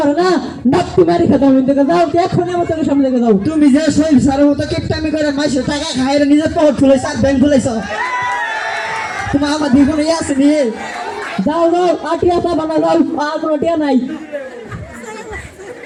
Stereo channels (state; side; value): identical; both; correlation 1.00